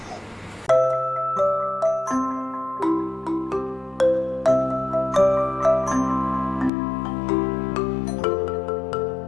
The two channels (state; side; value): drops out; right; at 6.7 s